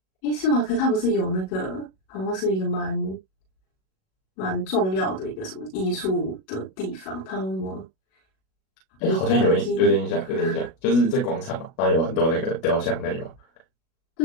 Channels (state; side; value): late; right; 37 ms